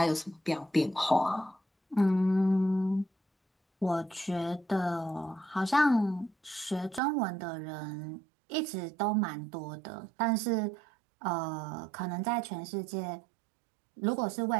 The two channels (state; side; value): drops out; left; at 7.0 s